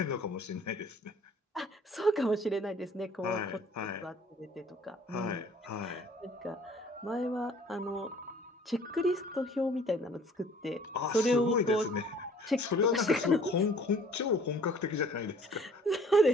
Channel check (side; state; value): both; normal; correlation 0.53